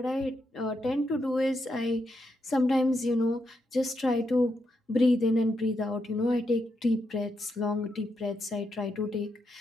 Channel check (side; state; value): both; normal; correlation 0.82